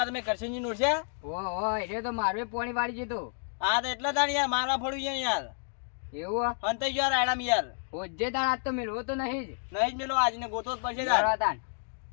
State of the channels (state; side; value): silent; right; 58 dB below the other